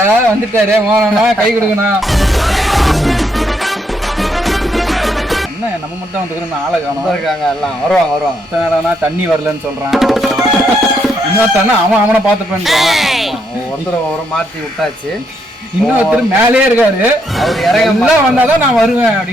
வந்துட்டாரு. மோனா கை கொடுக்கணா. என்ன நம்ம மட்டும் வந்துக்கிறோம், ஆளை காணும் இருக்காங்க. எல்லாம் வருவாங்க. தண்ணி வரலன்னு சொல்கிறான். இன்னொருத்தானே அவனை பார்த்துப்பேன். ஒருத்தர் மாற்றி விட்டாச்சு. இன்னொருத்தர் மேலே இருக்காரு. அவர் இறங்கலாம் வந்தாதான் நான் வருவேன்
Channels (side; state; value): both; normal; correlation 0.75